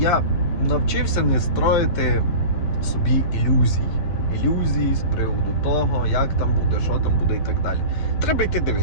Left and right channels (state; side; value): late; right; 11 ms